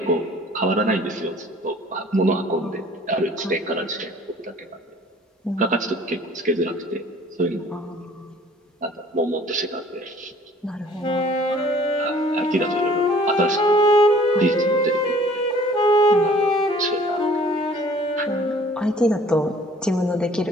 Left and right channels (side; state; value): both; normal; correlation 0.53